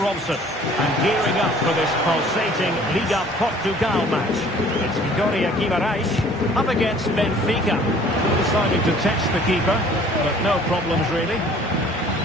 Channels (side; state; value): both; normal; correlation 0.53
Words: And gearing up for this pulsating Liga Portugal match, it's Vitória Guimarães up against Benfica. Deciding to test the keeper, but no problems really.